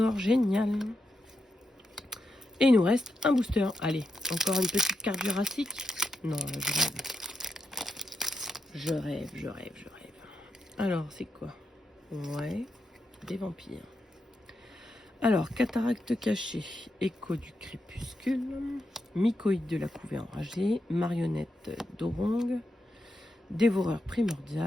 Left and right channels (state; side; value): normal; both; correlation 0.85